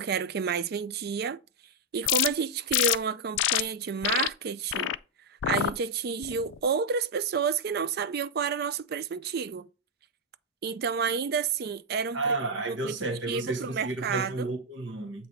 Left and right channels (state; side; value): normal; both; correlation 0.00